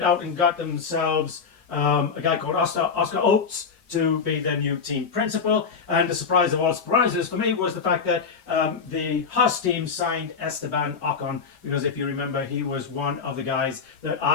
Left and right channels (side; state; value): right; quieter; 5.7 dB